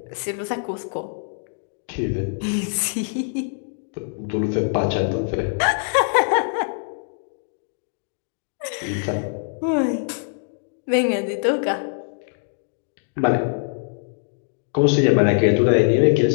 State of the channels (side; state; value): right; silent; digital silence